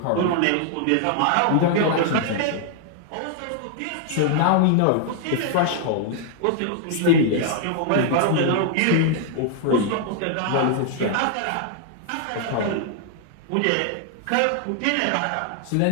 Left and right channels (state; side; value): different; both; correlation 0.00